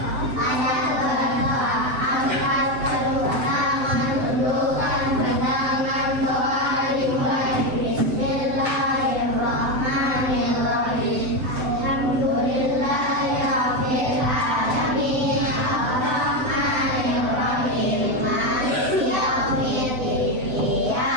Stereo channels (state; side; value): late; left; 7.9 ms